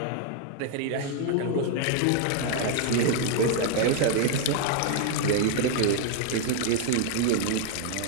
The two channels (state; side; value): different; both; correlation 0.00